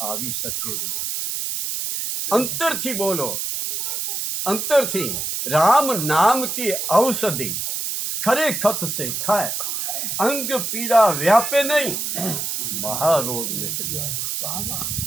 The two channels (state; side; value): noise; right; hiss, 2 dB below the sound